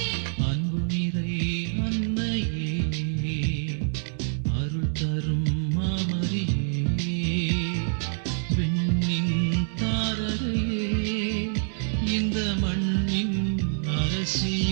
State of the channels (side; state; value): left; silent; 61 dB below the other